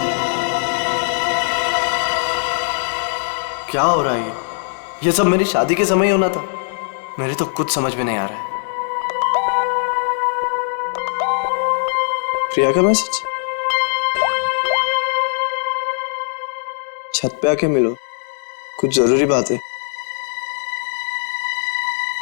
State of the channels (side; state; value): right; silent; digital silence